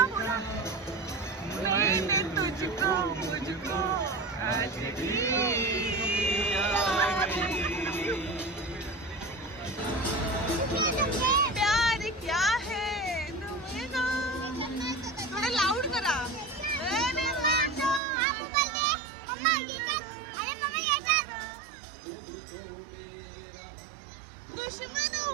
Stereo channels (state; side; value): drops out; left; at 18.0 s